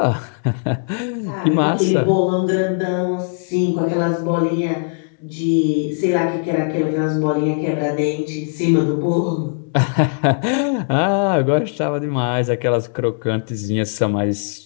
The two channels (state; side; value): silent; right; 66 dB below the other